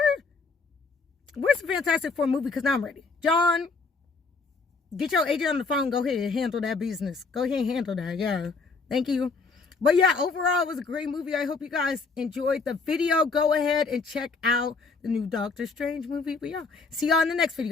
Where's the Fantastic Four movie? Because now I'm ready. John, get your agent on the phone. Go ahead and handle that business. Go ahead and handle that. Yeah. Thank you. But yeah, overall, it was a great movie. I hope you guys enjoyed the video. Go ahead and check out the new Doctor Strange movie. But yeah, see y'all in the next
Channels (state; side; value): quieter; right; 4.3 dB